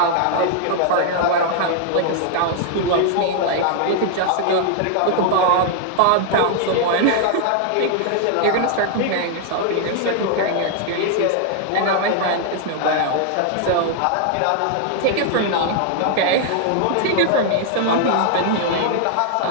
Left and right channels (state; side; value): different; both; correlation 0.00